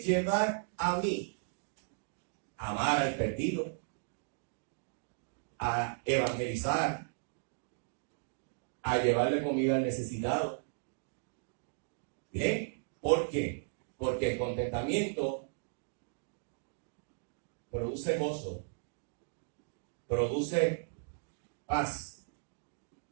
a mí a amar al perdido, a evangelizar, a llevarle comida al necesitado. ¿Bien? ¿Por qué? Porque el contentamiento produce gozo, produce paz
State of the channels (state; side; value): silent; left; digital silence